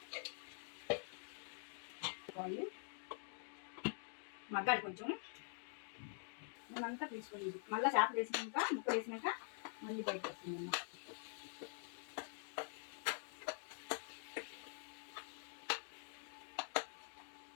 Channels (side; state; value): right; silent; digital silence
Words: మగ్గాలి కొంచెం. మేమంతా తీసుకొని మళ్ళీ చేపలు వేసినాక ముక్క వేసినాక మళ్ళీ బయటకు వస్తుంది.